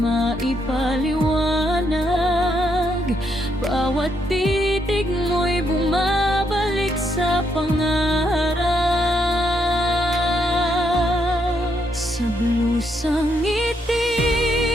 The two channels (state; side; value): normal; both; correlation 0.76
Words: bawat titig mo'y bumabalik sa pangarap. Sa blusang